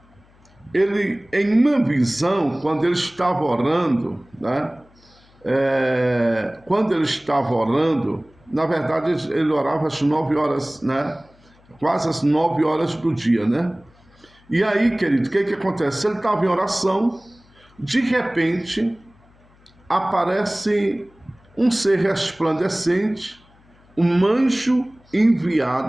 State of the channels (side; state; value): left; noise; hum, 30 dB below the sound